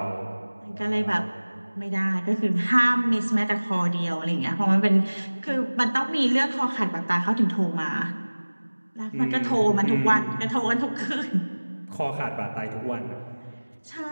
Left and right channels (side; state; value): both; inverted; correlation -1.00